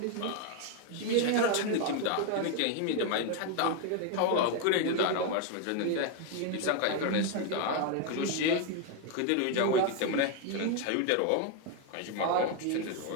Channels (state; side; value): different; both; correlation 0.01